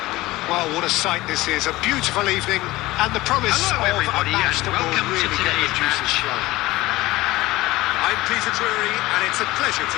Well, what a sight this is. A beautiful evening and the promise Hello, of everybody, a match and that will welcome to really get today's the juices match. flowing. I'm Peter Drury, and it's a pleasure to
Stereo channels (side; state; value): right; quieter; 18.8 dB